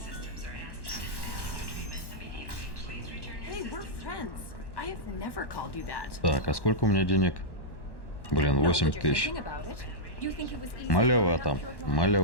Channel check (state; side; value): late; right; 1.1 ms